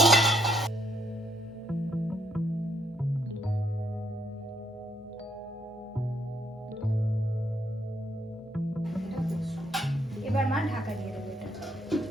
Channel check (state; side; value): normal; both; correlation 0.72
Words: এবার মা ঢাকা দিয়ে দেবে এটা।